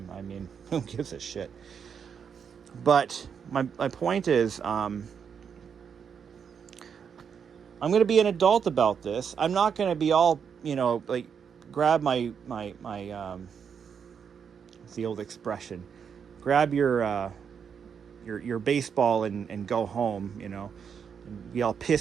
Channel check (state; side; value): quieter; left; 7.0 dB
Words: I mean, who gives a shit? But my point is, I'm going to be an adult about this. I'm not going to be all, like, grab my it's the old expression, grab your baseball and go home, and be all